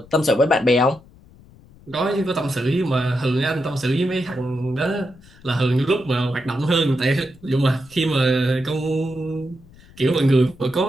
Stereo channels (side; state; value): left; noise; rumble, 24 dB below the sound